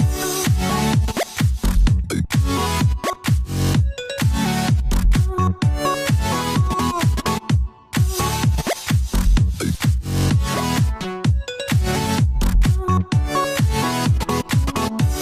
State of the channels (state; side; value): identical; both; correlation 1.00